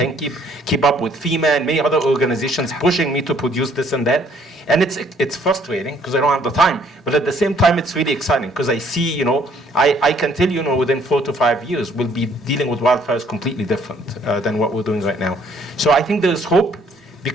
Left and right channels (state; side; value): normal; both; correlation 0.63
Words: keep up with FEMA and many other organizations pushing me to produce this and that. And it's frustrating because I don't have the time. But at the same time, it's really exciting because I see, I can tell you, within 4 to 5 years, we'll be dealing with wildfires completely different than what we're doing right now. So I think there's hope.